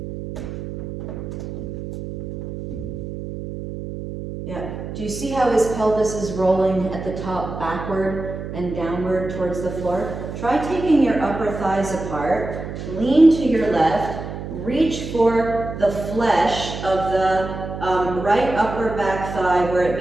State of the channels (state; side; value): noise; right; hum, 8 dB below the sound